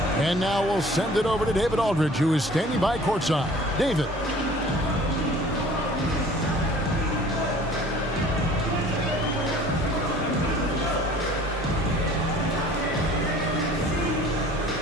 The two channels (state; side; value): normal; both; correlation 0.49